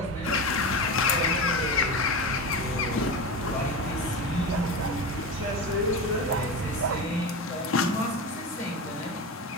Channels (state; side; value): normal; both; correlation 0.23